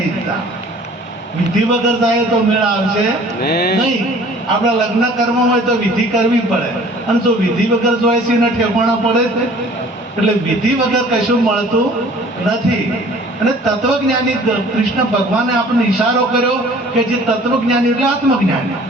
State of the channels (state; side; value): normal; both; correlation 0.50